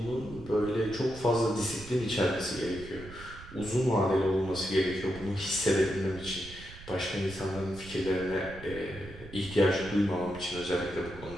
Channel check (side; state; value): right; noise; rumble, 16 dB below the sound